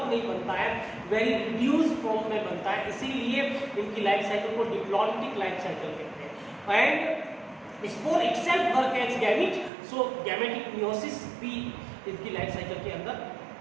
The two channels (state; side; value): drops out; left; at 9.7 s